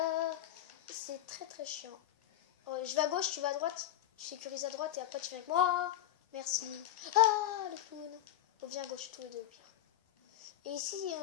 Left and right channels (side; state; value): right; quieter; 12.7 dB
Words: C'est très chiant. Oh, je vais à gauche, tu vas à droite. Tu sécurises à droite et après tu viens avec moi. Merci. Ah, le clown. On vient à gauche, tous les deux au pire. Et ici,